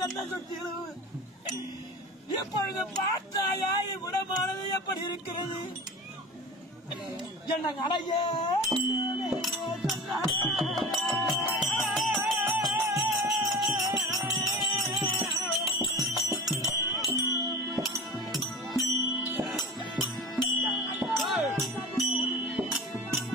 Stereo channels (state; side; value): normal; both; correlation 0.34